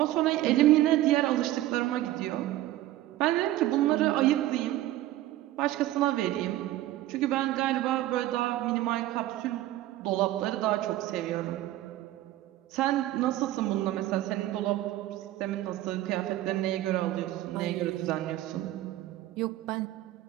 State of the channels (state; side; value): quieter; left; 15.1 dB